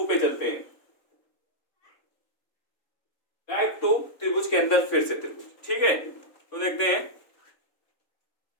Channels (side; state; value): right; late; 3.5 ms